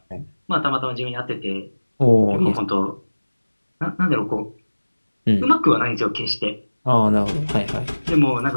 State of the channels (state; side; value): inverted; both; correlation -1.00